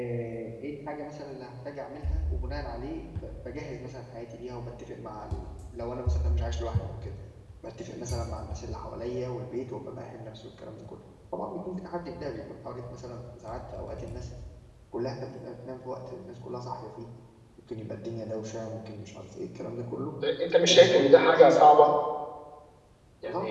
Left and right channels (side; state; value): both; identical; correlation 1.00